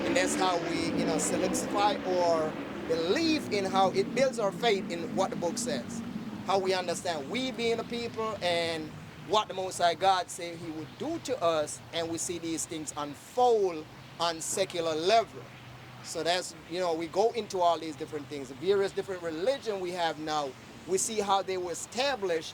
And that's how we, you know, solidify or believe in how it builds our faith in what the book says. How we understand we being the people and what the Most High God said he would do to us, and we see these things unfold on secular level. So that's, you know, we go into all these different things. The various different religion we have now, we see how they were established,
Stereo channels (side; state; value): both; identical; correlation 1.00